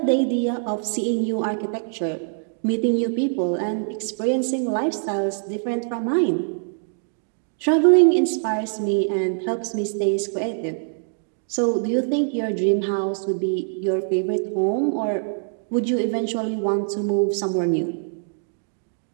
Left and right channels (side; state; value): left; silent; digital silence